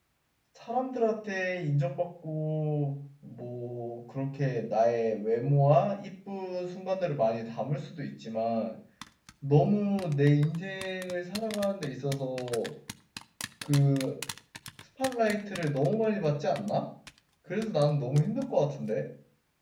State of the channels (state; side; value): identical; both; correlation 1.00